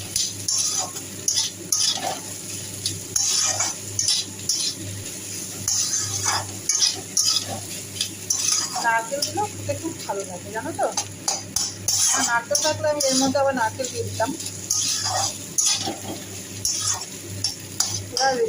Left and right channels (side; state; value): both; identical; correlation 1.00